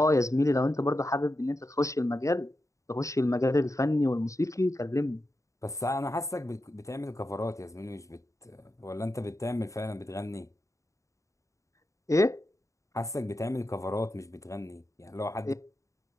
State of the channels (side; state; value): right; late; 0.15 ms